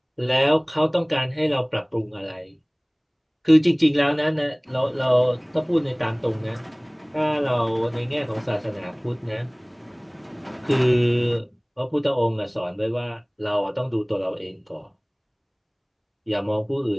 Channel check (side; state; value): both; identical; correlation 1.00